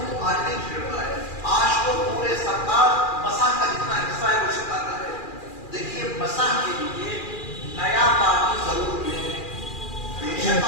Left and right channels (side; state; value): right; late; 2.4 ms